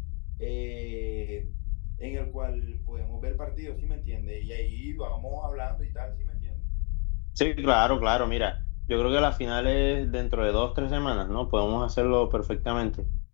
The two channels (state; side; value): quieter; right; 35.4 dB